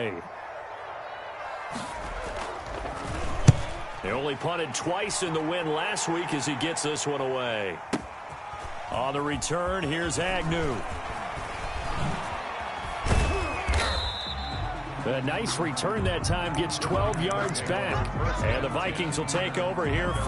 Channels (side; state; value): both; identical; correlation 1.00